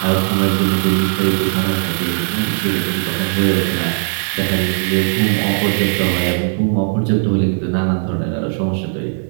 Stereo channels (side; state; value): left; silent; digital silence